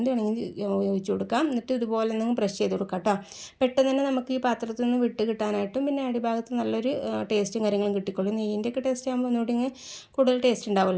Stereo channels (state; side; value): identical; both; correlation 1.00